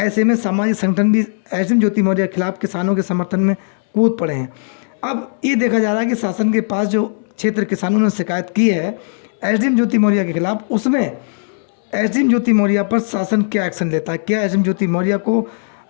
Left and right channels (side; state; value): right; silent; 68 dB below the other